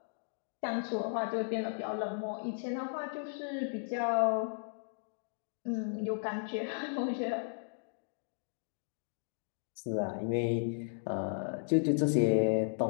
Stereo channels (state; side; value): silent; right; digital silence